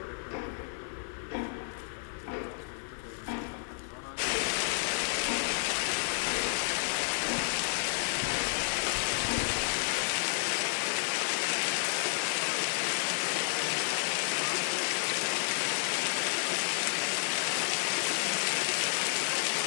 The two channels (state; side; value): silent; right; 57 dB below the other